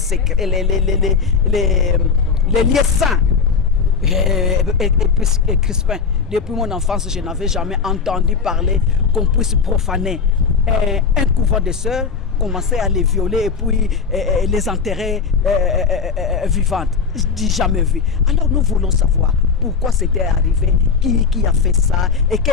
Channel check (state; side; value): quieter; right; 5.6 dB